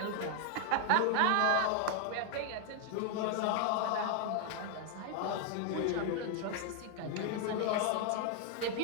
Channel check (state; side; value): different; both; correlation 0.00